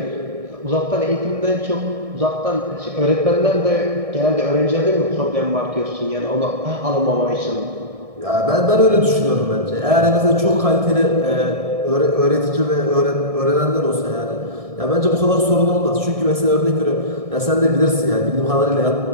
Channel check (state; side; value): late; left; 1.6 ms